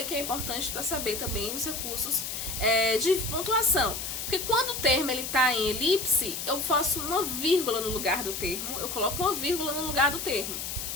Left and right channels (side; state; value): left; noise; hiss, 5 dB below the sound